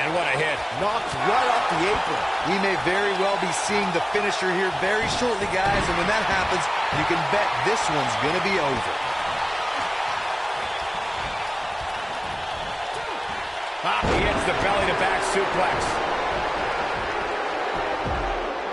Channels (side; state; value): both; identical; correlation 1.00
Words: what a hit. Knocked right off the apron. We may very well be seeing the finisher here very shortly, guys, and when that happens, you can bet this one's going to be over. He hits the belly-to-back suplex.